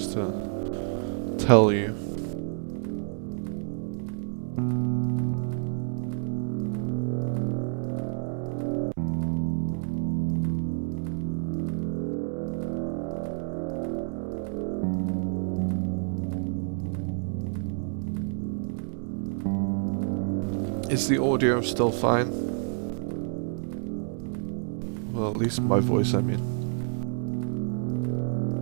to tell you. Is the audio still fine? Well, at least my voice, I mean.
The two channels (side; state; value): left; silent; 59 dB below the other